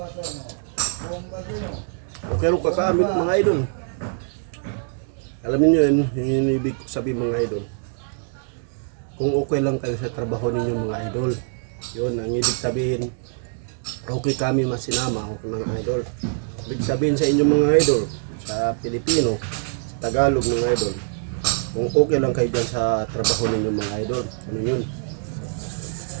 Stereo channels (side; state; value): left; silent; 63 dB below the other